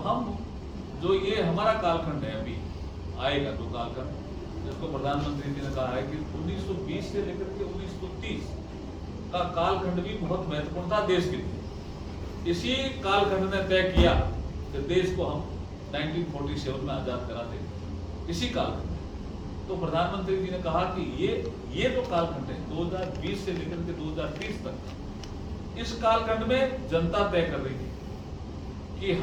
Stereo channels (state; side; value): identical; both; correlation 1.00